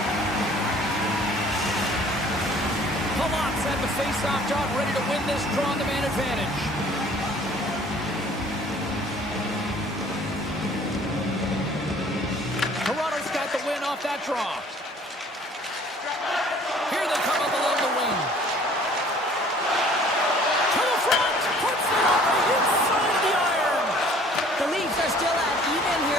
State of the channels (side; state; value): both; normal; correlation 0.53